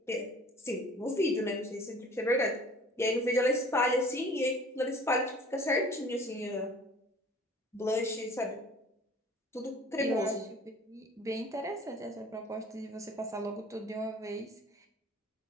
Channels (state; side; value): normal; both; correlation 0.49